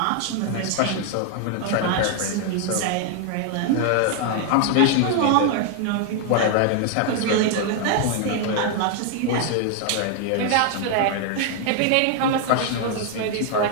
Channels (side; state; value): both; different; correlation 0.00